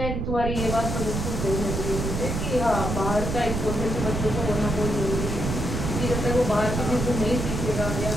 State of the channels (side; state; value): right; noise; rumble, 2 dB below the sound